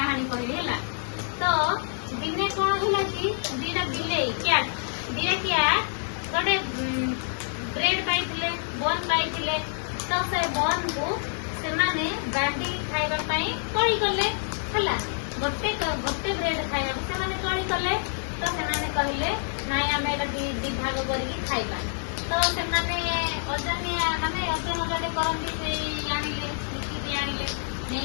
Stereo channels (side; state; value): right; silent; digital silence